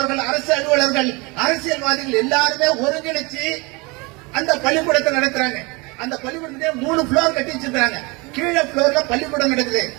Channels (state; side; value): quieter; left; 26.7 dB